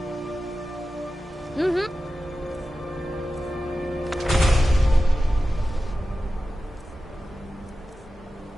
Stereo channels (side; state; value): both; normal; correlation 0.93